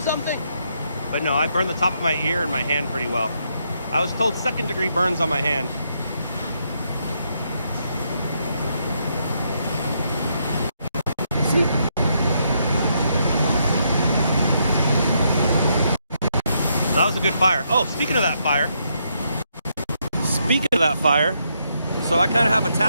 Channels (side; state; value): both; inverted; correlation -0.77